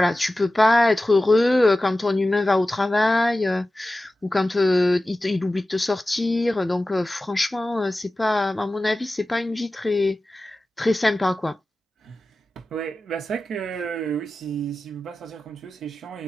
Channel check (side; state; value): both; normal; correlation 0.95